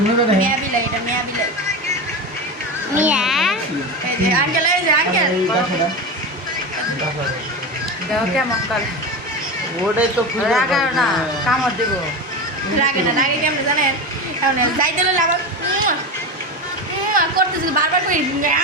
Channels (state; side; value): normal; both; correlation 0.21